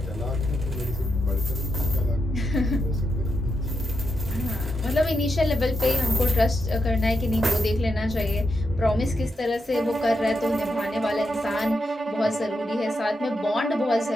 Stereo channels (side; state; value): both; normal; correlation 0.84